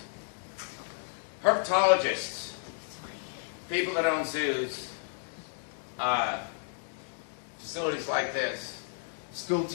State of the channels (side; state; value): right; silent; digital silence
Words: herpetologists, people that own zoos, facilities like this, school